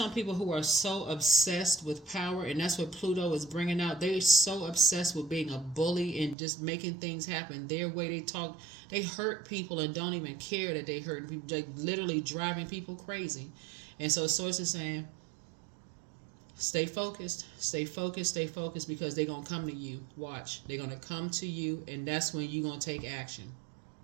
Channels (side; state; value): left; drops out; at 6.4 s